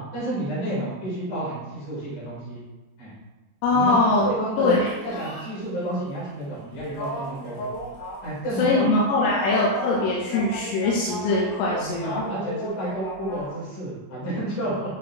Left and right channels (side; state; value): right; late; 21 ms